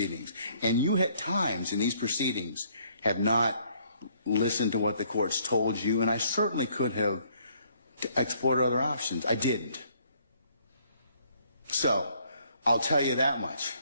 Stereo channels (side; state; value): both; inverted; correlation -0.65